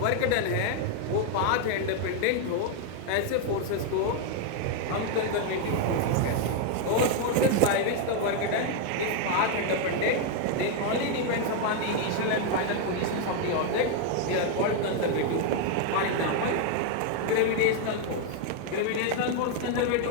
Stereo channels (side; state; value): both; different; correlation 0.01